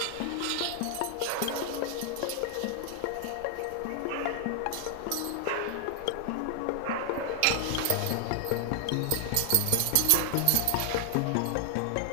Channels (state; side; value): different; both; correlation 0.00